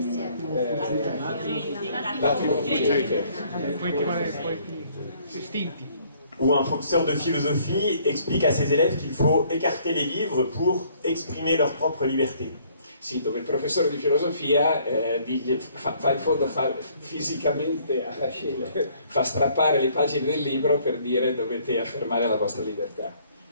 Où un professeur de philosophie explique à ses élèves qu'il faut écarter les livres pour exprimer leur propre liberté. Sì, dove il professore di filosofia fa in fondo fisicamente fa strappare le pagine del libro per dire dovete affermare la vostra libertà.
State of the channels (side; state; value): both; inverted; correlation -0.62